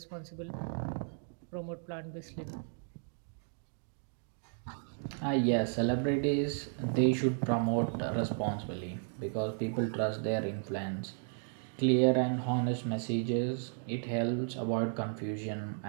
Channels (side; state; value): left; silent; 55 dB below the other